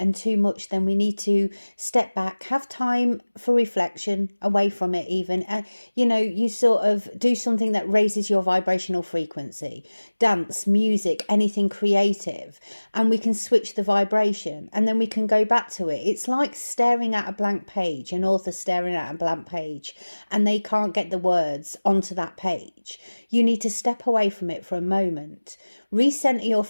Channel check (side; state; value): both; inverted; correlation -1.00